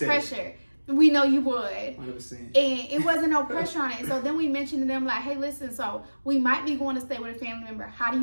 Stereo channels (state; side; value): inverted; both; correlation -1.00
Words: pressure. We know you would. 100%. And it wasn't no pressure on it. So then we mentioned to them like, hey, listen, so we might be going to stay with a family member. How do